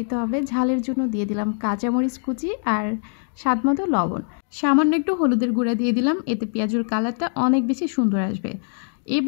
হবে। ঝালের জন্য দিয়ে দিলাম কাঁচামরিচ কুচি আর স্বাদমতো লবণ, সামান্য একটু হলুদের গুঁড়া দিয়ে দিলাম, এতে পেঁয়াজুর কালারটা অনেক বেশি সুন্দর আসবে।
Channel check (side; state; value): right; silent; 57 dB below the other